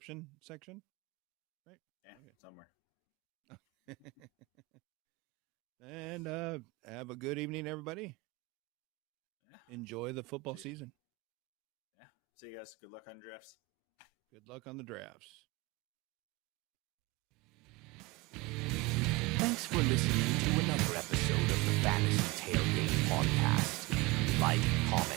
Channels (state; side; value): quieter; left; 22.3 dB